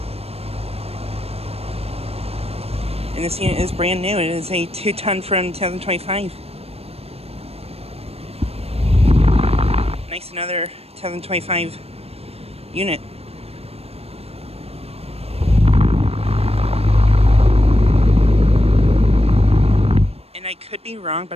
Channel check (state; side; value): late; left; 0.29 ms